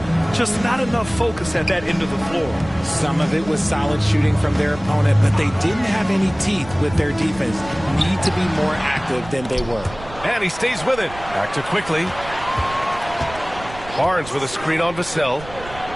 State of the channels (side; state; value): right; noise; rumble, 16 dB below the sound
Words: Just not enough focus at that end of the floor. Some of it was solid shooting from their opponent, but they didn't have any teeth with their defense. Need to be more active than they were. And he stays with it. Back to Quickly. Barnes with a screen on Vassell.